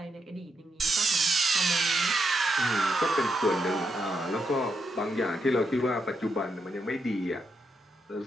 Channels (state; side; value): normal; both; correlation 0.82